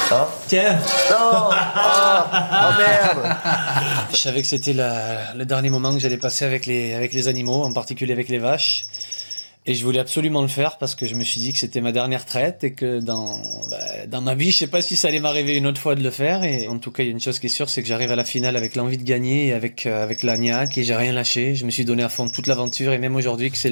Hein? Tiens. Non. Ah, oh merde. Je savais que c'était le dernier moment que j'allais passer avec les animaux, en particulier avec les vaches. Et je voulais absolument le faire parce que je me suis dit que c'était ma dernière traite et que dans ma vie, je sais pas si ça allait m'arriver une autre fois de le faire. Et en tout cas, il y a une chose qui est sûre, c'est que j'arrive à la finale avec l'envie de gagner et avec la niaque et j'ai rien lâché. Je me suis donné à fond toute l'aventure et même aujourd'hui que c'est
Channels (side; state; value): both; inverted; correlation -1.00